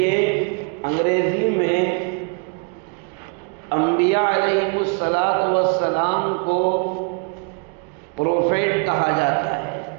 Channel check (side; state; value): left; quieter; 38.2 dB